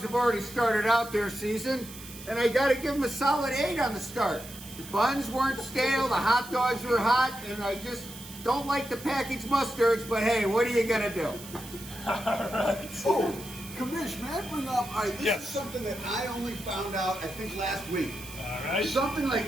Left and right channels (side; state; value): right; noise; hiss, 15 dB below the sound